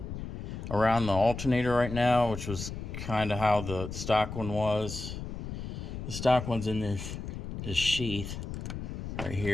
around the alternator right now, which was kind of how the stock one was. The stock one's in this sheath right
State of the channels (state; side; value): noise; left; rumble, 7 dB below the sound